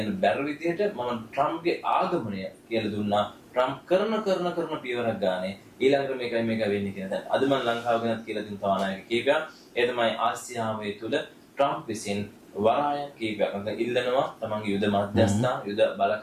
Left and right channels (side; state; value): both; identical; correlation 1.00